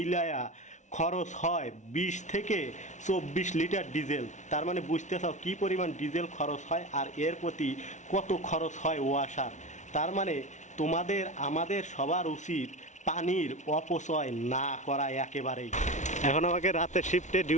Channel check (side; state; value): right; late; 0.35 ms